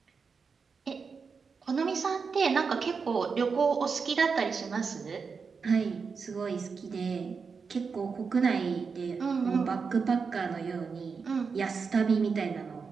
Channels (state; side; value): quieter; left; 5.3 dB